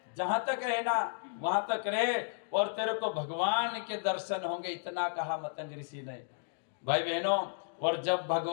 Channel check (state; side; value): silent; right; digital silence